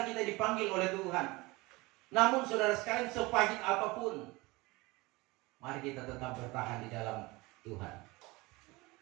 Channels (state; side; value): quieter; left; 22.8 dB